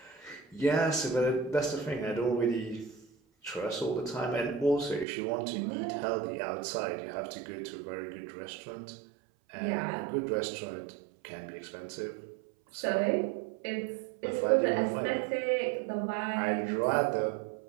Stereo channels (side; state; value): left; drops out; at 5.1 s